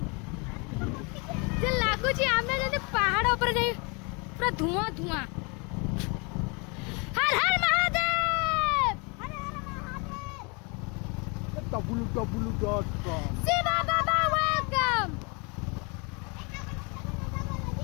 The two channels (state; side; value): quieter; right; 31.1 dB